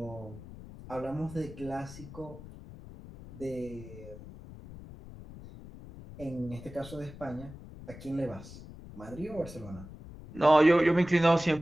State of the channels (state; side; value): noise; left; rumble, 15 dB below the sound